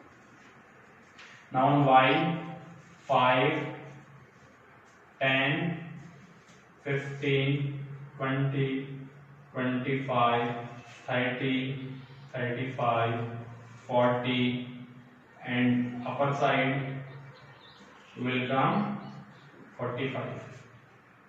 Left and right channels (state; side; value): identical; both; correlation 1.00